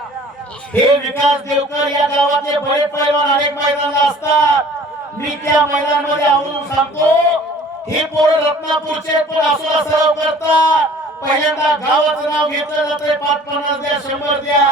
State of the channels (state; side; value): normal; both; correlation 0.49